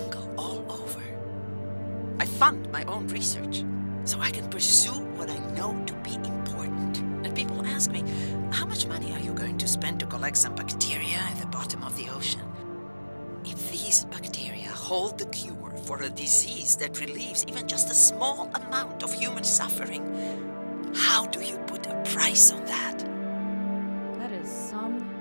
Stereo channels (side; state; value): both; inverted; correlation -1.00